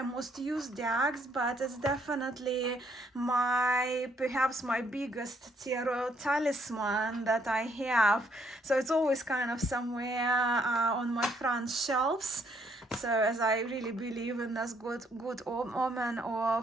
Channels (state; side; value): normal; both; correlation 0.69